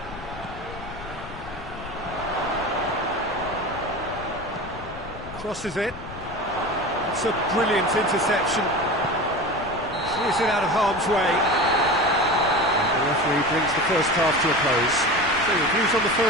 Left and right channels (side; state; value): left; noise; rumble, 15 dB below the sound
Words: Crosses it. It's a brilliant interception. Clears it out of harm's way. And the referee brings the first half to a close. So, views on the